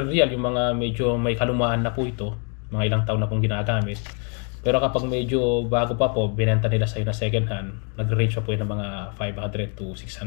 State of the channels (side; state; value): right; quieter; 37.6 dB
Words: riyal, yung mga medyo may kalumaan na po ito, mga ilang taon na pong ginagamit. Pero kapag medyo bago pa po, binenta nila sa'yo na second hand, nag-range pa po yun ng mga 500 to